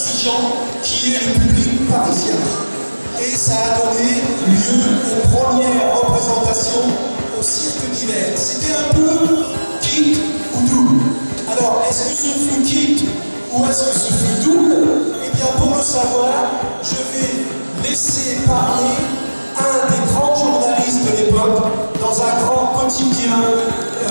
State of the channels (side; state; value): both; inverted; correlation -1.00